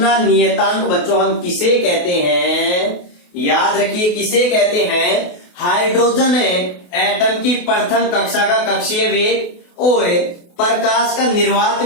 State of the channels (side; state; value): right; late; 28 ms